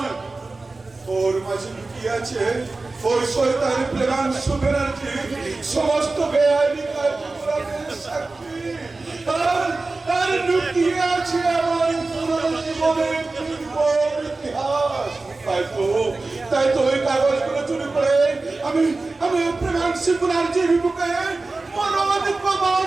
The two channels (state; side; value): quieter; left; 3.5 dB